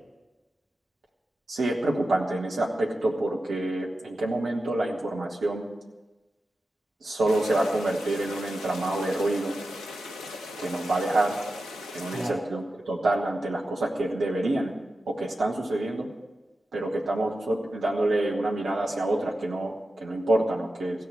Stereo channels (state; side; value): normal; both; correlation 0.92